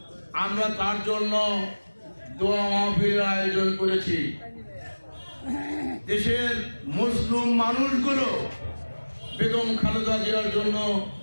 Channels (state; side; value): inverted; both; correlation -1.00